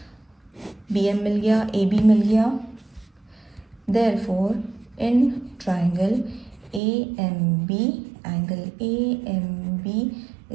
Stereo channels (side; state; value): left; drops out; at 6.8 s